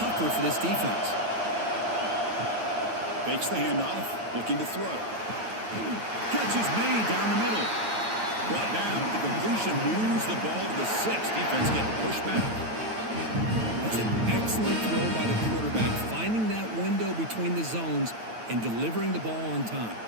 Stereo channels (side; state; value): left; late; 9.2 ms